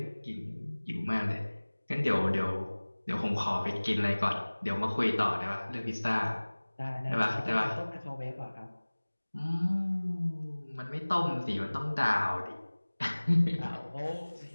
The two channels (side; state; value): both; inverted; correlation -1.00